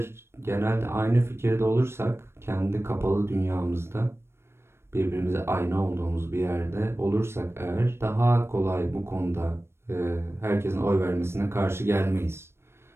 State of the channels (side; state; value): left; late; 0.12 ms